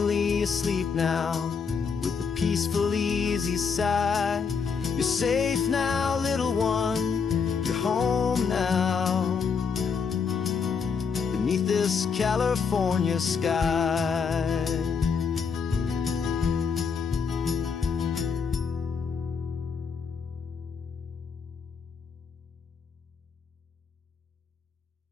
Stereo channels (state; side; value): quieter; right; 5.8 dB